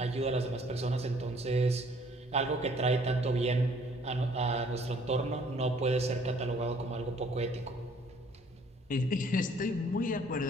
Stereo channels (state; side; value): normal; both; correlation 0.59